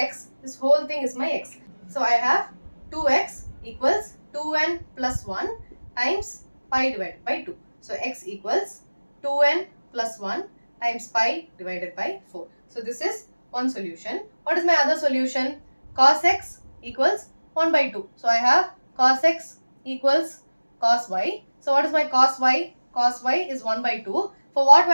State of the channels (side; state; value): both; inverted; correlation -1.00